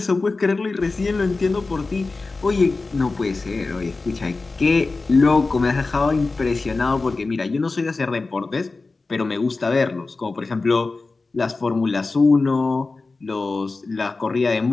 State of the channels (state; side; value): quieter; right; 3.7 dB